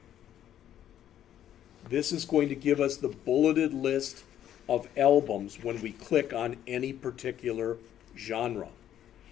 This is going to give us the bulleted list of albums when we click on any particular genre.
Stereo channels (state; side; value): quieter; right; 10.9 dB